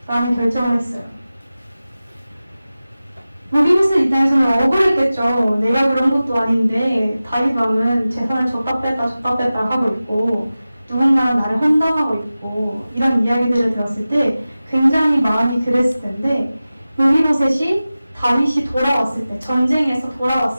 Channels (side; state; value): both; inverted; correlation -0.96